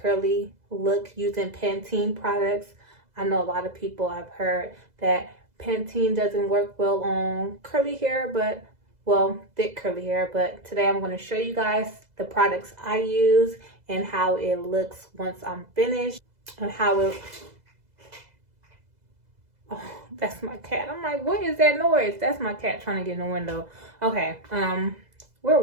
look using Pantene products. I know a lot of people have heard that Pantene doesn't work well on curly hair, but well, thick curly hair. But today I'm going to show you guys the products I use and how it looks once I'm finished, and how it, oh, that's my cat. I'm like, what is that noise? That's my cat trying to get in the window. Okay, where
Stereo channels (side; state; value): left; late; 2.0 ms